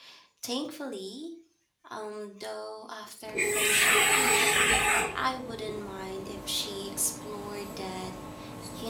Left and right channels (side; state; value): both; identical; correlation 1.00